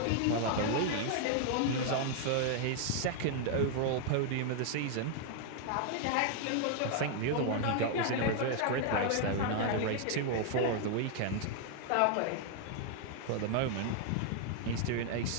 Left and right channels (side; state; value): both; different; correlation 0.00